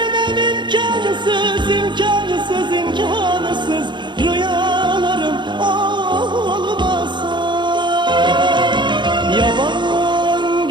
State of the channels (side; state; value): left; late; 0.22 ms